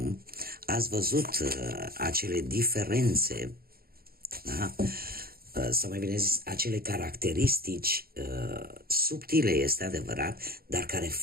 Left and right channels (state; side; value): late; left; 0.44 ms